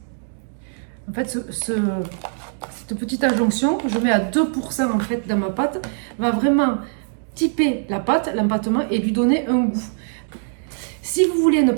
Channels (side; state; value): left; silent; digital silence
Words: En fait, cette petite adjonction, je mets à 2% en fait dans ma pâte, va vraiment typer la pâte, l'empattement et lui donner un goût. Si vous voulez ne